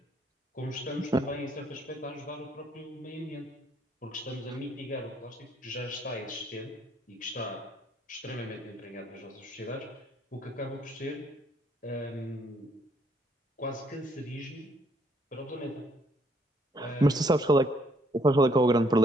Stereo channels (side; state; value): both; normal; correlation 0.68